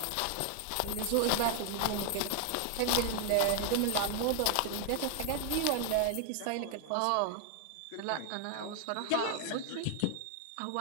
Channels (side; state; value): both; different; correlation 0.00